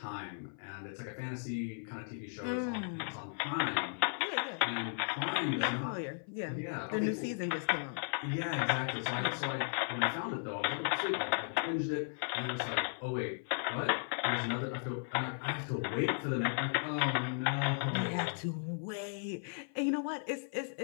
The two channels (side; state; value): right; silent; 54 dB below the other